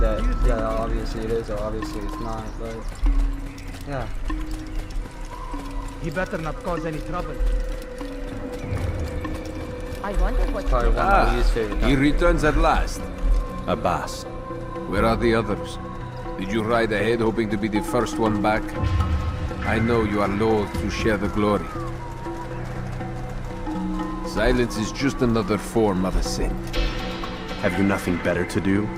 yeah, obviously it is or obviously it's not, but yeah. He better not cause any trouble. I wonder what Probably one of my least favorite He times. returns at last. Abbas. Where are the others? Did you ride ahead hoping to be the first one back? I know you are loath to share the glory. Silence is just another form of a sin. Have you nothing better to do?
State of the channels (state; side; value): identical; both; correlation 1.00